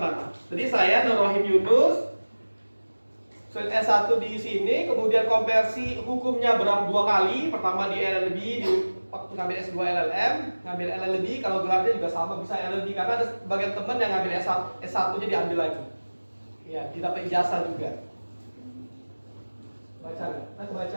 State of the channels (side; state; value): both; inverted; correlation -1.00